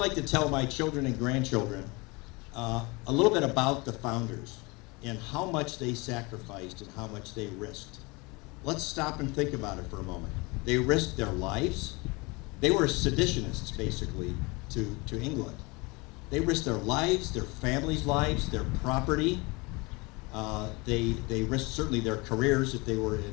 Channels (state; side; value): quieter; right; 26.3 dB